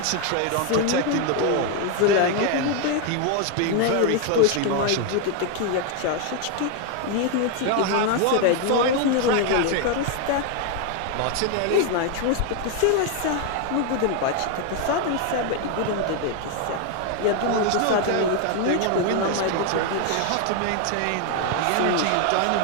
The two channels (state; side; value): different; both; correlation 0.01